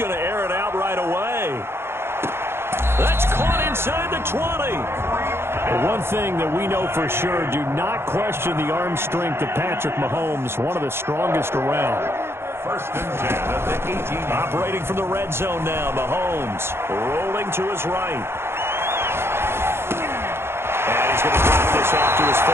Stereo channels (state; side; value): late; left; 0.12 ms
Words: to air it out right away. That's caught inside the 20. But one thing that we know for sure, do not question the arm strength of Patrick Mahomes, one of the strongest around. First and 10 at the 18. Operating from the red zone now, Mahomes rolling to his right. And he's going to drop this off to his